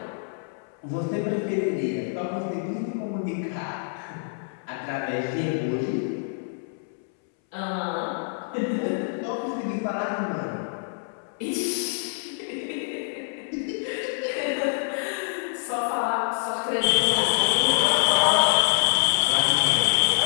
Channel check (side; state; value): right; silent; 61 dB below the other